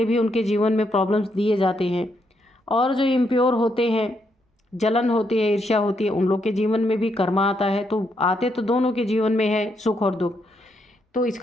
भी उनके जीवन में प्रॉब्लम्स दिए जाते हैं। और जो इम्प्योर होते हैं, जलन होती है, ईर्ष्या होती है, उन लोग के जीवन में भी कर्मा आता है। तो आते तो दोनों के जीवन में है सुख और दुख। तो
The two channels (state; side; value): normal; both; correlation 0.78